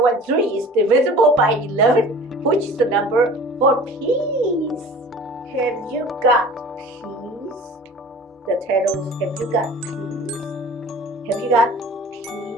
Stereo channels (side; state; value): both; normal; correlation 0.43